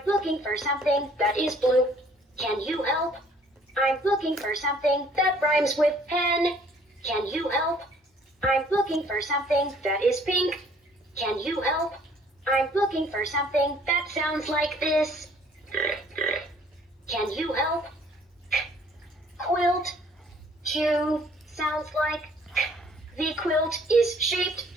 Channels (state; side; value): normal; both; correlation 0.58